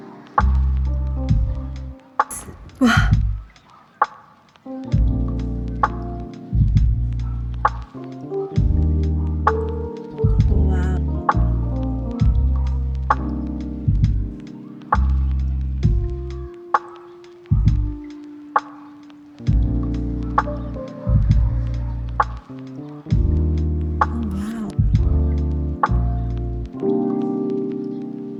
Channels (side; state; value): both; identical; correlation 1.00